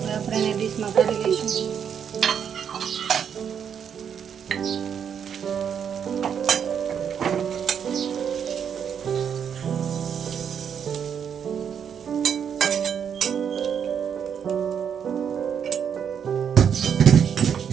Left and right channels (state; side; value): quieter; left; 7.8 dB